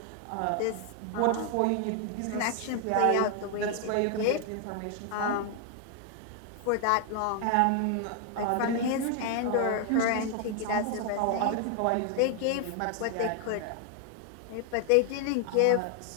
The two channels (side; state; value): both; different; correlation 0.00